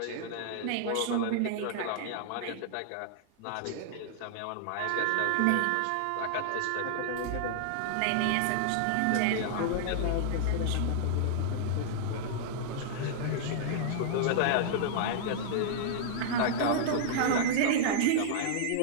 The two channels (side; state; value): both; different; correlation -0.01